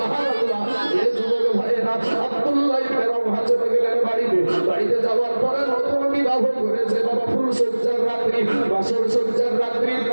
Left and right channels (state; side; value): inverted; both; correlation -1.00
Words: এই যুবক ভাইরা আব্দুল্লাহ ইবনে রাওহা চলে গেলেন বাড়িতে, বাড়িতে যাওয়ার পরে নতুন বিবাহ করেছে বাবা, ফুল সজ্জার রাত্রি, বাসর সজ্জার রাত্রি।